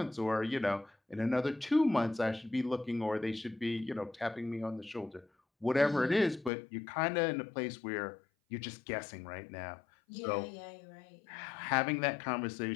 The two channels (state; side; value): drops out; right; at 6.5 s